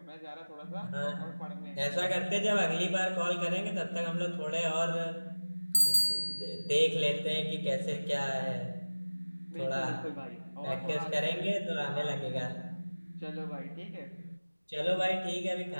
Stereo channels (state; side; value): inverted; both; correlation -1.00